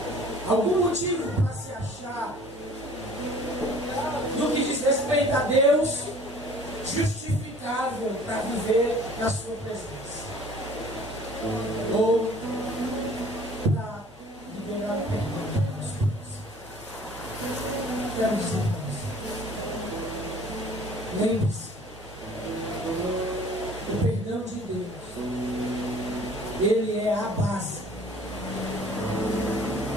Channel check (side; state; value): both; normal; correlation 0.51